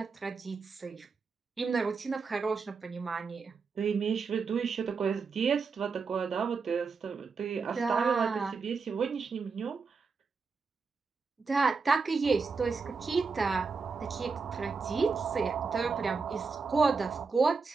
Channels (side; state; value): left; quieter; 4.9 dB